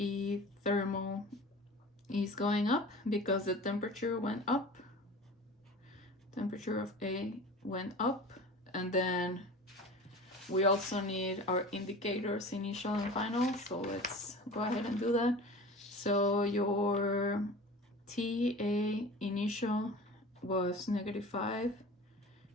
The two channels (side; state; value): both; normal; correlation 0.37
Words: thermal is going up because the temperature went up. Temperature of A went up. And then we also need our indicators, initial and final. So let's go ahead and do that. So your TA initial was -5.